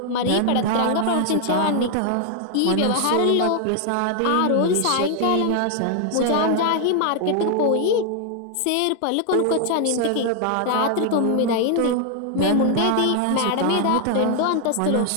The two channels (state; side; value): different; both; correlation 0.00